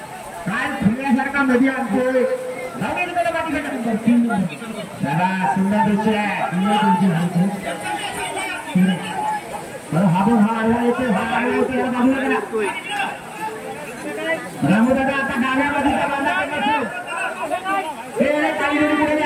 काय फुलण्यासारखा मध्ये आणतोय नंबर 3 चला सुंदर दृश्य आहे. युवा देवजी हरेकर हा बघ हा आला येते हा आला येते बाजूला करा. रामदादा आता डाव्यामध्ये बांधा करण्याचं काही जणी पुढे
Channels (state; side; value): identical; both; correlation 1.00